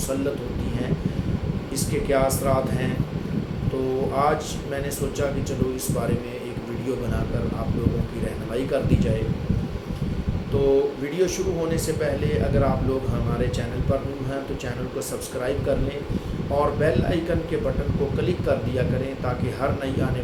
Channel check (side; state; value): both; identical; correlation 1.00